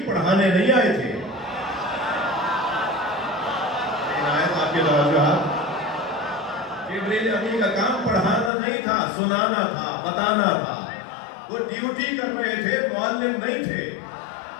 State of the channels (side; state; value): right; drops out; at 8.5 s